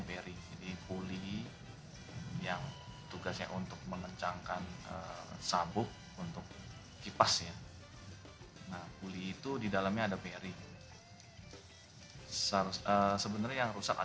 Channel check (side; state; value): both; identical; correlation 1.00